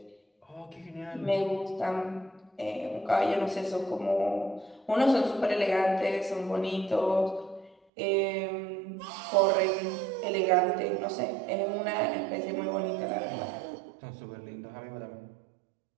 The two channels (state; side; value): drops out; left; at 7.8 s